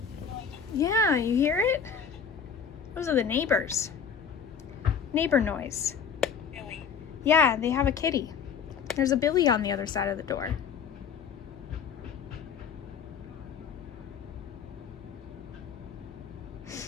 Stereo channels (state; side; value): quieter; right; 6.9 dB